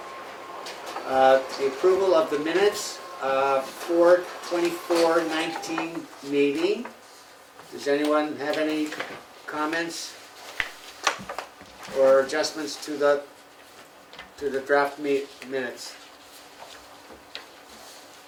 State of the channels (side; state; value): both; identical; correlation 1.00